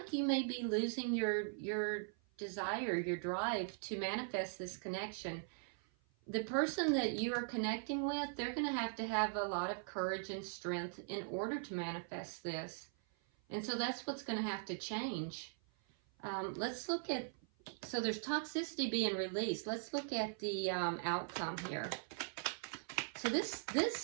you may be losing your desire, your drive to manifest this connection. The person that you are connecting with, they're going to have a lot of courage and strength in order to manifest this. And so that's what's going to have to change. Let's look at, so there's toxicity being released. Let's look at the outcome here. So this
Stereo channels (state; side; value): silent; left; 51 dB below the other